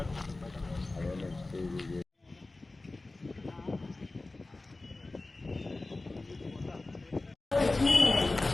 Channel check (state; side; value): quieter; right; 3.1 dB